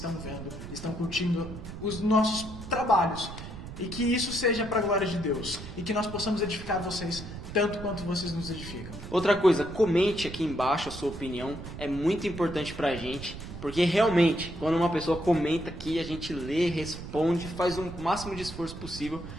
vendo, estão curtindo os nossos trabalhos. E que isso seja para a glória de Deus. E que nós possamos edificar vocês tanto quanto vocês nos edificam. Outra coisa, comente aqui embaixo a sua opinião. É muito importante pra gente. Porque realmente, quando uma pessoa comenta aqui, a gente lê, responde, faz o máximo de esforço possível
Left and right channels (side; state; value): right; noise; rumble, 11 dB below the sound